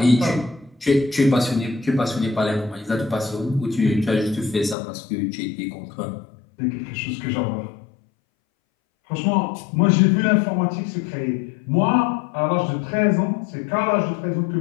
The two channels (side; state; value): right; drops out; at 4.8 s